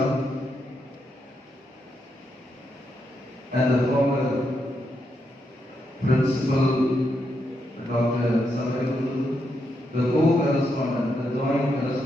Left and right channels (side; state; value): both; normal; correlation 0.81